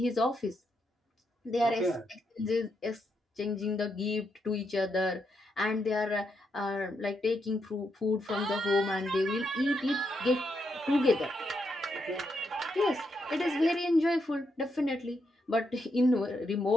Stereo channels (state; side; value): normal; both; correlation 0.81